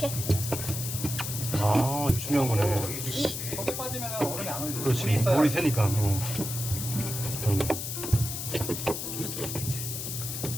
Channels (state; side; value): noise; left; hiss, 5 dB below the sound